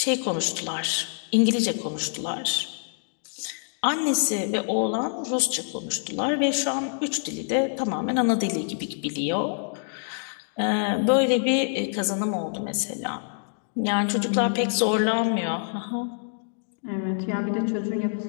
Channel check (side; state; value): right; silent; digital silence